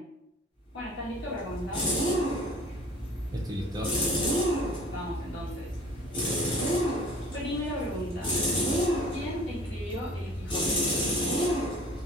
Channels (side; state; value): both; normal; correlation 0.48